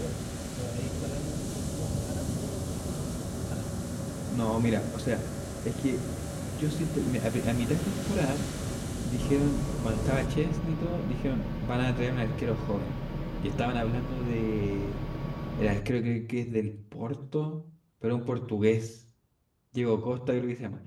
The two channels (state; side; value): identical; both; correlation 1.00